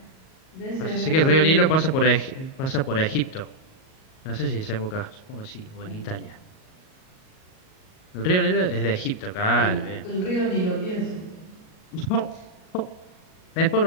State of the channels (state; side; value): late; right; 38 ms